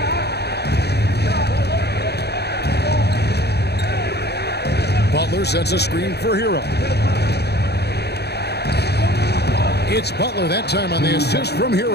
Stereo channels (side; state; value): right; late; 0.48 ms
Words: Butler sets a screen for Hero. It's Butler that time on the assist from